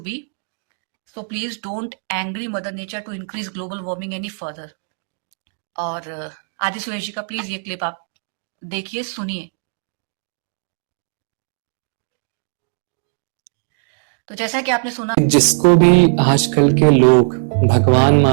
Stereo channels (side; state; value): left; silent; digital silence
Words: be. So please don't angry Mother Nature to increase global warming any further. और आदि सुरेश जी का please ये clip आप देखिए, सुनिए। तो जैसा कि आपने सुना, जिसको भी आजकल के लोग भगवान